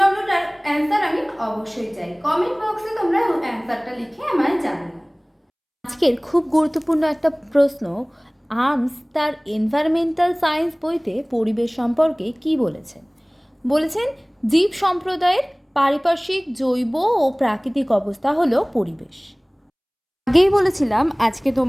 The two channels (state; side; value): identical; both; correlation 1.00